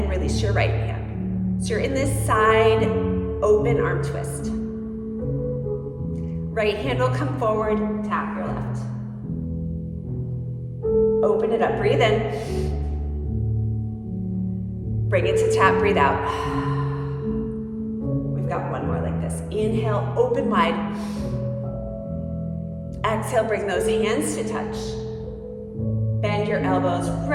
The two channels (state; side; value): identical; both; correlation 1.00